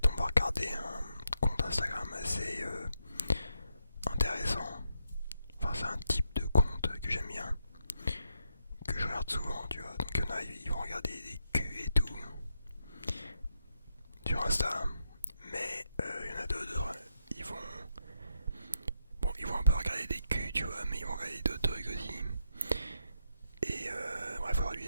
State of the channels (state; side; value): inverted; both; correlation -0.81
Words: on va regarder un compte Instagram assez intéressant. Enfin c'est un type de compte que j'aime bien, que je regarde souvent tu vois. Donc il y en a, ils vont regarder des culs et tout sur Insta, mais il y en a d'autres, ils vont... Bon, ils vont un peu regarder des culs, tu vois, mais ils vont regarder d'autres trucs aussi. Et bref, aujourd'hui,